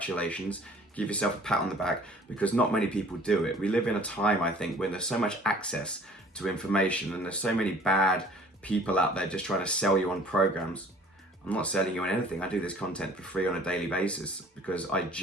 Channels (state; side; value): normal; both; correlation 0.52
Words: Give yourself a pat on the back because not many people do it. We live in a time, I think, when there's so much access to information and there's so many bad people out there just trying to sell you on programs. I'm not selling you on anything. I do this content for free on a daily basis because I